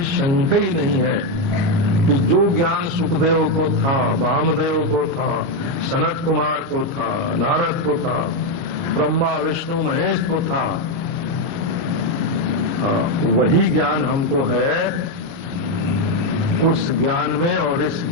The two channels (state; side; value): late; left; 29 ms